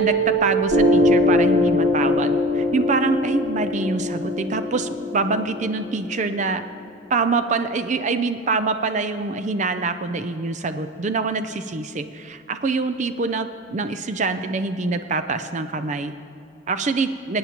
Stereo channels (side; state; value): both; normal; correlation 0.34